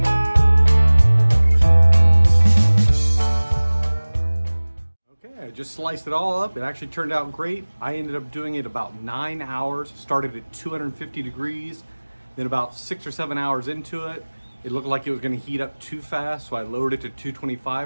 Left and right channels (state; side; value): inverted; both; correlation -1.00